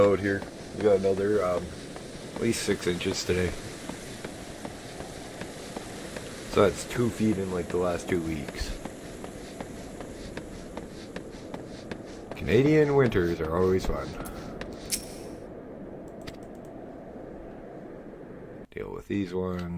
here. We got another, at least 6 inches today. So that's 2 feet in like the last 2 weeks. Canadian winters are always fun. Deal with these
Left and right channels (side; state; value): both; identical; correlation 1.00